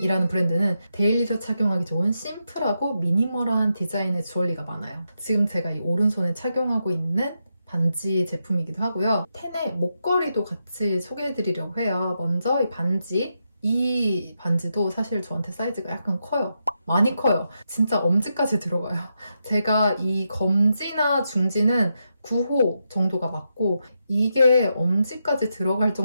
브랜드는 데일리로 착용하기 좋은 심플하고 미니멀한 디자인의 주얼리가 많아요. 지금 제가 이 오른손에 착용하고 있는 반지 제품이기도 하고요. 텐의 목걸이도 같이 소개해드리려고 해요. 먼저 이 반지. 이 반지도 사실 저한테 사이즈가 약간 커요. 많이 커요. 진짜 엄지까지 들어가요. 제가 이 검지나 중지는 9호 정도가 맞고 이게 엄지까지 들어갈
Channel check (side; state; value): both; inverted; correlation -0.84